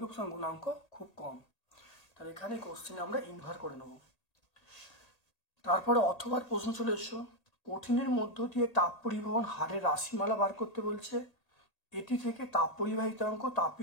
প্রসারণ গুণাঙ্ক খুব কম। তাহলে এখানে কোশ্চেনে আমরা ইনভার করে নেব। তারপরে অথবা প্রশ্ন চলে এসো, কঠিনের মধ্য দিয়ে তাপ পরিবহন হারের রাশিমালা বার করতে বলছে, এটি থেকে তাপ পরিবাহিতাঙ্ক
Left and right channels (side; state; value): right; late; 1.8 ms